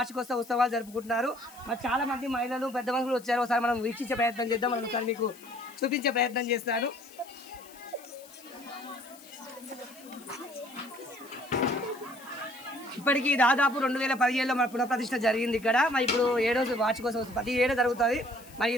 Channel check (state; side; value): noise; left; hiss, 21 dB below the sound